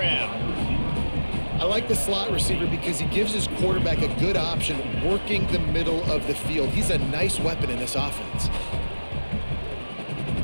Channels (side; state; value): both; inverted; correlation -1.00